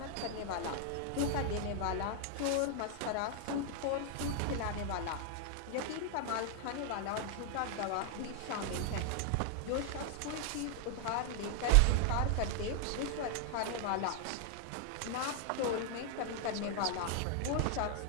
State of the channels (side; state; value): both; different; correlation 0.00